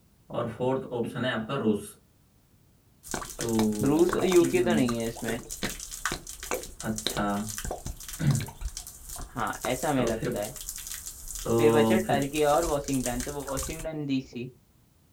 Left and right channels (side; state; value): both; identical; correlation 1.00